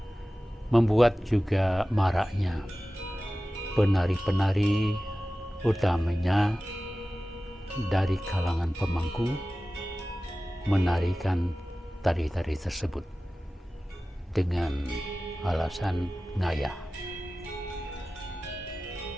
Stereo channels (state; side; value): normal; both; correlation 0.96